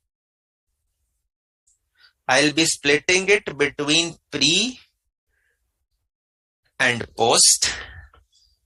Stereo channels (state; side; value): identical; both; correlation 1.00